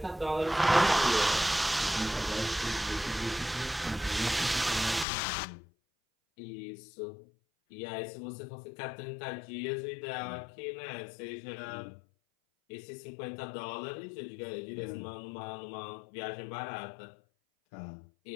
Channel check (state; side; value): drops out; right; at 5.1 s